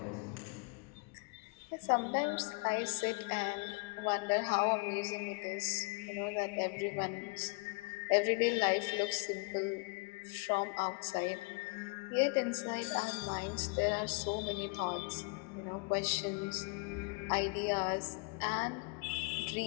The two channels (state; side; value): quieter; right; 31.3 dB